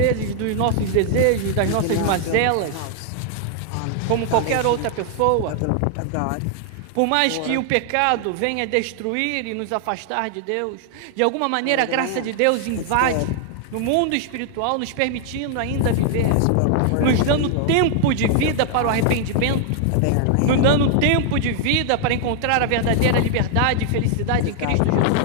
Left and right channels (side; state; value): both; different; correlation 0.00